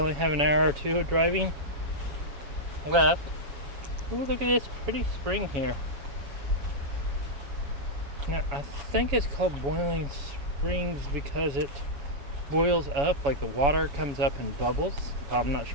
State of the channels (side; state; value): left; late; 7.1 ms